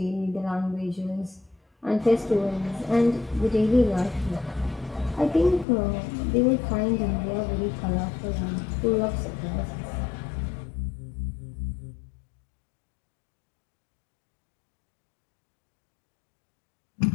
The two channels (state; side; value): drops out; right; at 5.7 s